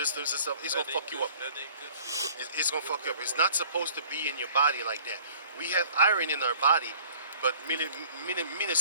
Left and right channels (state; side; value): inverted; both; correlation -0.52